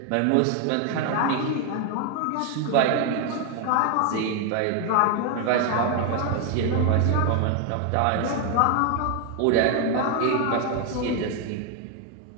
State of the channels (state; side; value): different; both; correlation 0.01